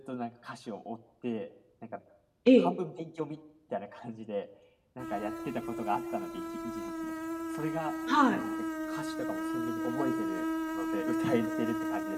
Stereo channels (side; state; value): both; identical; correlation 1.00